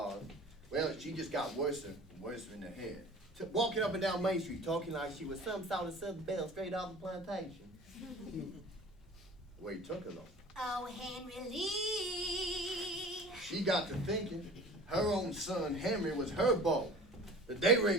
well, she just got worse and worse in her head. Walking up and down Main Street, talking like she was some sort of Southern belle straight off the plantation. The way he took her, though. oh, Henry Lee. She got to thinking her own son, Henry, was her beau, that they were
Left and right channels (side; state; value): both; normal; correlation 0.42